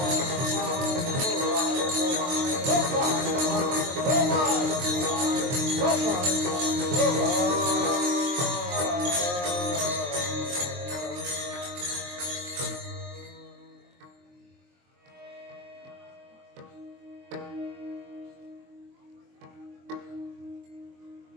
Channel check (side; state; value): left; late; 23 ms